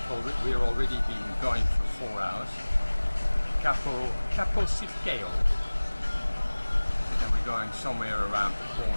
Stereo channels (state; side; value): inverted; both; correlation -1.00